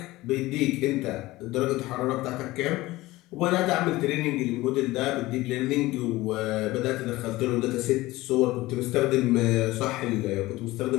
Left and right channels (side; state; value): right; quieter; 18.7 dB